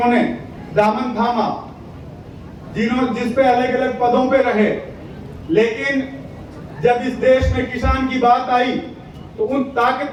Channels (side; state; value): both; identical; correlation 1.00